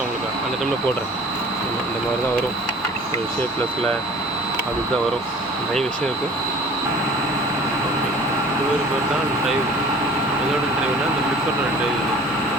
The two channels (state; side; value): normal; both; correlation 0.47